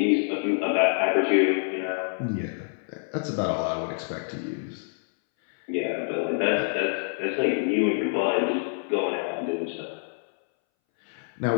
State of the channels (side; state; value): right; silent; 61 dB below the other